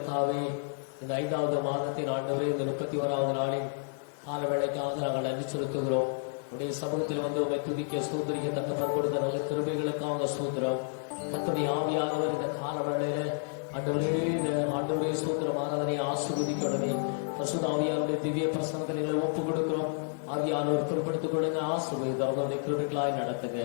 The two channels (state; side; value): silent; right; 57 dB below the other